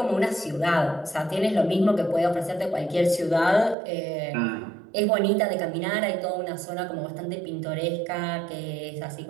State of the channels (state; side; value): drops out; left; at 3.8 s